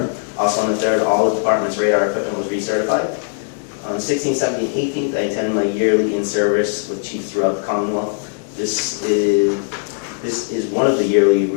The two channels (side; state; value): right; silent; digital silence